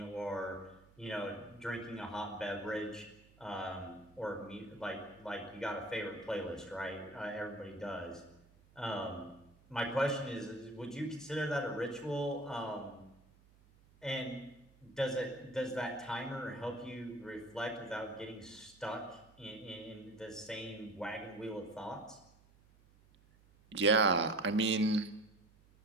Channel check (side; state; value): right; noise; hum, 27 dB below the sound